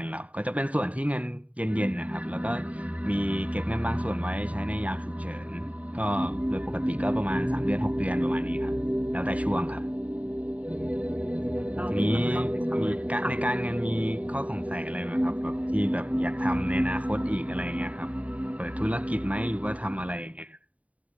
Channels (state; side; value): late; left; 0.068 ms